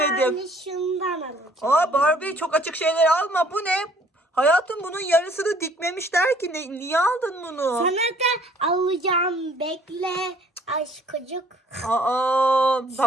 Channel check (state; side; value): normal; both; correlation 0.59